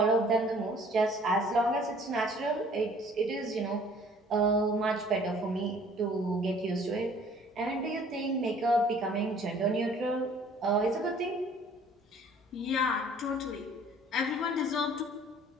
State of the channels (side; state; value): both; normal; correlation 0.54